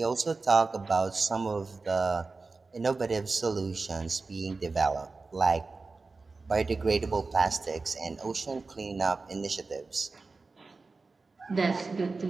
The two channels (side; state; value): left; quieter; 3.9 dB